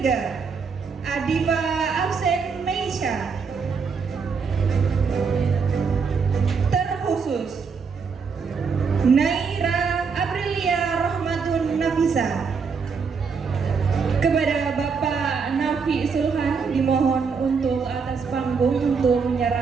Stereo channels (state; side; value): quieter; left; 5.5 dB